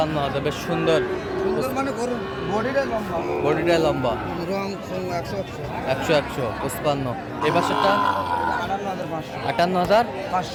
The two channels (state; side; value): identical; both; correlation 1.00